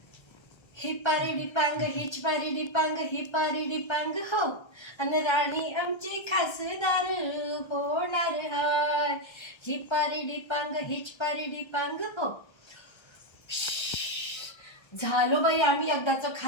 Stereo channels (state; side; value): late; right; 1.3 ms